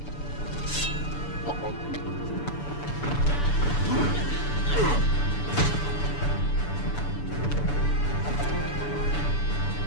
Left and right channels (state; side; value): late; right; 6.9 ms